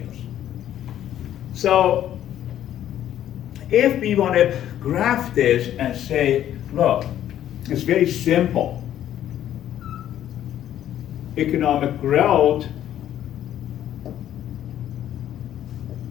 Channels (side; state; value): right; quieter; 11.4 dB